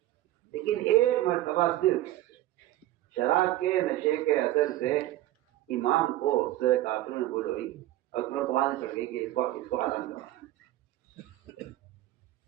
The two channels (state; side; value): quieter; left; 15.0 dB